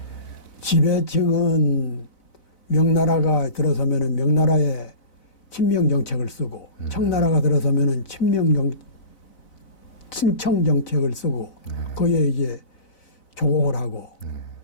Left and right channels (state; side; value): late; right; 4.0 ms